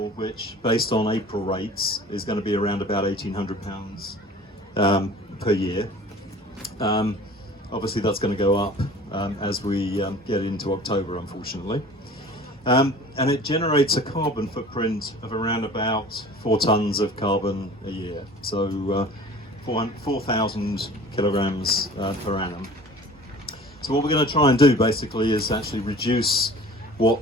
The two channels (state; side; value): normal; both; correlation 0.45